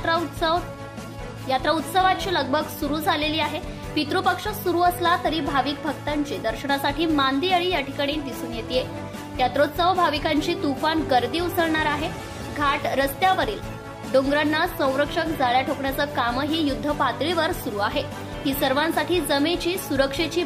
यात्रा उत्सवाची लगबग सुरू झालेली आहे। पितृपक्ष सुरू असला तरी भाविक भक्तांची दर्शनासाठी मांदियाळी या ठिकाणी दिसून येते। यात्रोत्सव भाविकांची तुफान गर्दी उसळणार आहे। घाट रस्त्यावरील डोंगरांना संरक्षक जाळ्या ठोकण्याचं कामही युद्ध पातळीवर सुरू आहे। ही सर्वांसाठी जमेची सुरक्षेची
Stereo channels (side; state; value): both; identical; correlation 1.00